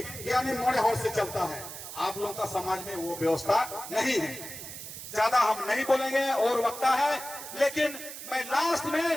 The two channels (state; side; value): noise; right; hiss, 10 dB below the sound